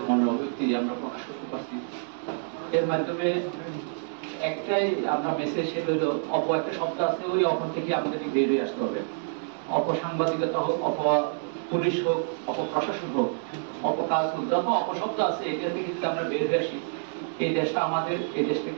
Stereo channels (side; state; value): left; silent; digital silence